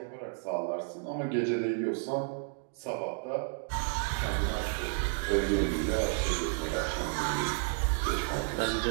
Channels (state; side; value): silent; left; 57 dB below the other